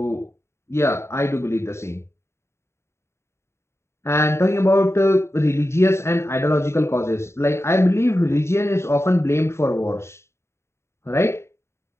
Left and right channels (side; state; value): right; late; 0.13 ms